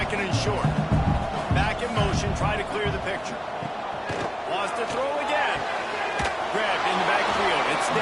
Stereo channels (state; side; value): identical; both; correlation 1.00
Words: and short. Back in motion, try to clear the picture. Wants to throw again. Grabbed in the backfield, it's